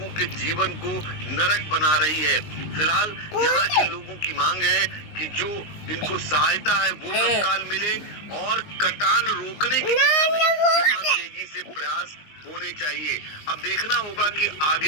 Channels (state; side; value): late; right; 19 ms